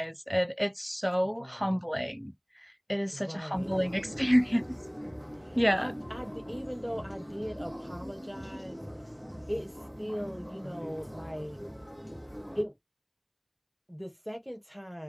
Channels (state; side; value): identical; both; correlation 1.00